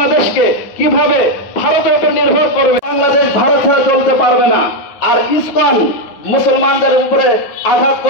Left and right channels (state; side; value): late; right; 9.3 ms